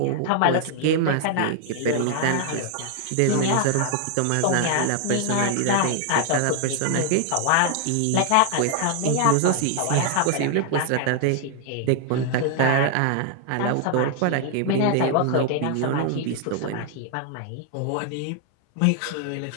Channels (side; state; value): both; different; correlation 0.00